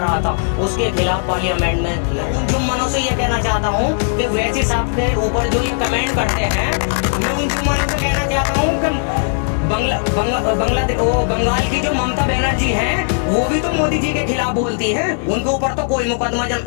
था, उसके खिलाफ पार्लियामेंट में। उन जुम्मनों से ये कहना चाहता हूँ कि वैसी साहब के ऊपर जो ये कमेंट करते हैं, मैं उन जुम्मनों से कहना चाहता हूँ कि बंगाल की जो ममता बनर्जी हैं, वो भी तो मोदी जी के खिलाफ बोलती हैं। उनके ऊपर तो कोई मुकदमा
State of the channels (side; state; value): right; silent; digital silence